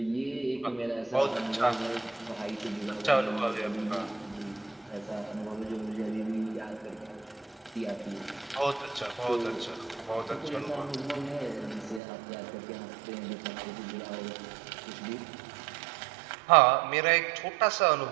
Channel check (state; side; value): drops out; left; at 12.0 s